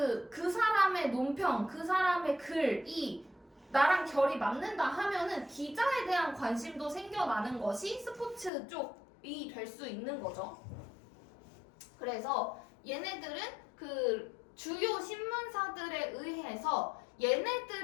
사람의 논평, 그 사람의 글이 나랑 결이 맞는다 하면은 기자에 대한 관심도 생겨나는 것이 스포츠 쪽이 될 수 있는 거죠. 그래서 얘네들은 그 주요 신문사들에 의해서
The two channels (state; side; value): drops out; right; at 8.5 s